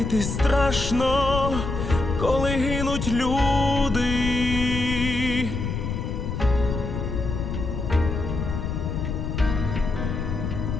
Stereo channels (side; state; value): left; noise; rumble, 3 dB below the sound